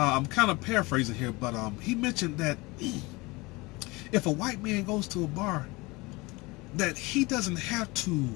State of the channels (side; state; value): right; quieter; 23.9 dB